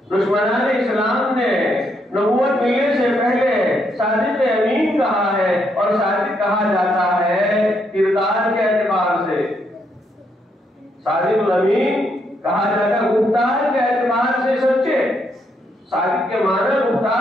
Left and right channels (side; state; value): both; normal; correlation 0.76